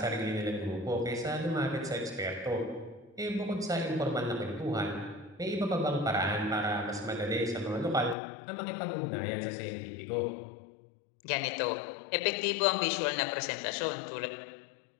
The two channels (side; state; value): right; drops out; at 8.2 s